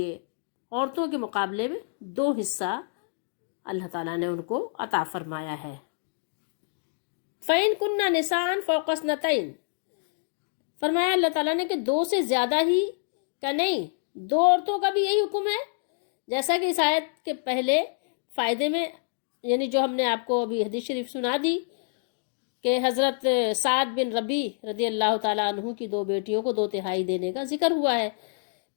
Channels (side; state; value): right; silent; digital silence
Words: عورتوں کے مقابلے میں 2 حصہ اللہ تعالیٰ نے ان کو عطا فرمایا ہے۔ فَإِن كُنَّ نِسَاءً فَوْقَ اثْنَتَيْنِ، فرمایا اللہ تعالیٰ نے کہ 2 سے زیادہ ہی کا نہیں، 2 عورتوں کا بھی یہی حکم ہے، جیسا کہ اس آیت کے پہلے فائدے میں، یعنی جو ہم نے آپ کو ابھی حدیث شریف سنا دی کہ حضرت سعد بن ربیع رضی اللہ تعالیٰ عنہ کی 2 بیٹیوں کو 2/3 دینے کا ذکر ہوا ہے۔